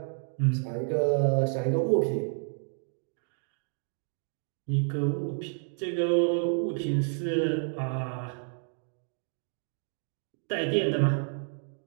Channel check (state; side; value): silent; left; 58 dB below the other